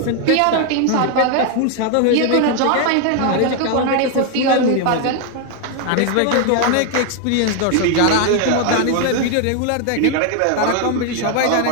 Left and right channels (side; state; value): both; different; correlation 0.01